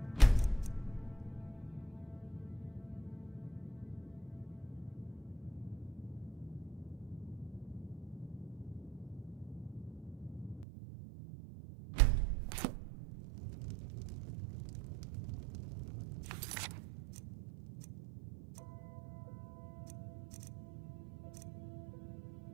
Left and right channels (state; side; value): drops out; left; at 10.7 s